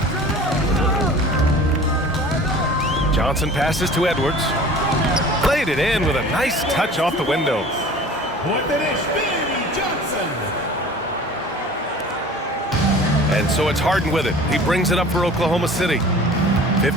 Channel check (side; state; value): both; normal; correlation 0.43